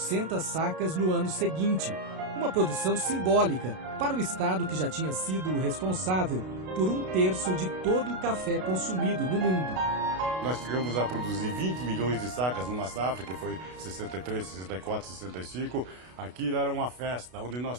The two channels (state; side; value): late; left; 32 ms